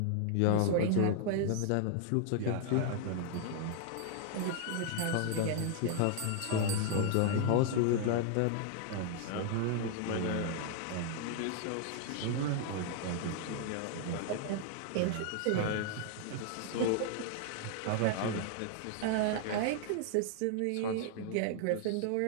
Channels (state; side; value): different; both; correlation 0.00